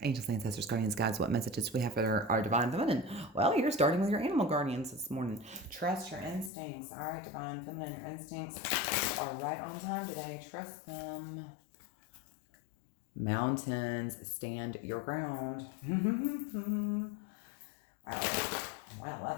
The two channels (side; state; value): right; drops out; at 6.5 s